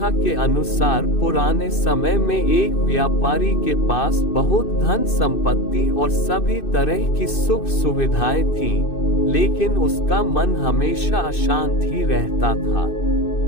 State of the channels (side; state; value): right; late; 2.6 ms